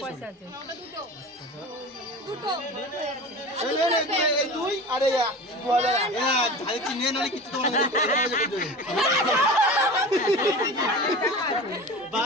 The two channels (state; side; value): normal; both; correlation 0.33